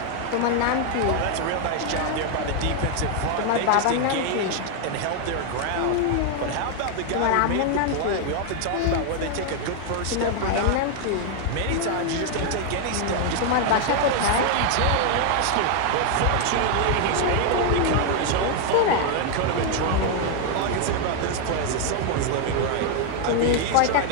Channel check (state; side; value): different; both; correlation 0.00